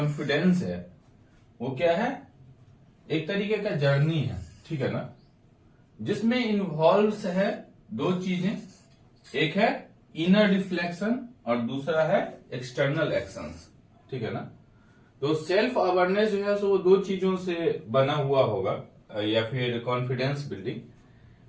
है वो क्या है, एक तरीके का जर्नी है। ठीक है ना, जिसमें इन्वॉल्व है दो चीजें, एक है इनर रिफ्लेक्शन और दूसरा है एक्सटर्नल एक्शंस। ठीक है ना। तो सेल्फ अवेयरनेस जो है सो वो दो चीजों से बना हुआ होगा, या फिर कॉन्फिडेंस बिल्डिंग।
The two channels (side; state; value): both; identical; correlation 1.00